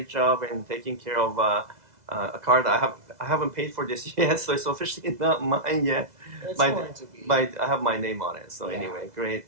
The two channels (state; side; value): late; left; 2.0 ms